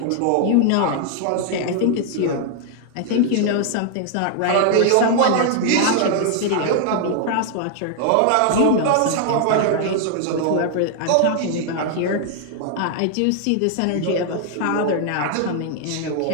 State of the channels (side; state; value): both; different; correlation 0.00